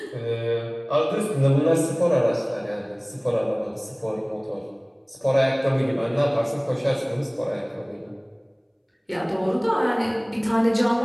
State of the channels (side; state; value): both; identical; correlation 1.00